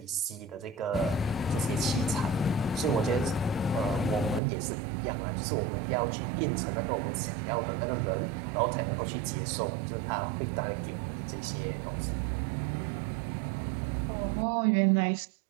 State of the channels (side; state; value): left; drops out; at 4.4 s